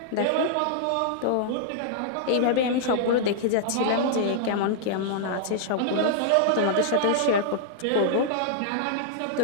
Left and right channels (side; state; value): both; different; correlation -0.01